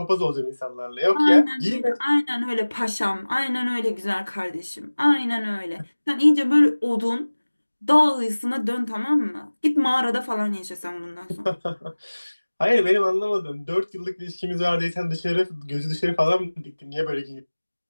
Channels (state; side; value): inverted; both; correlation -1.00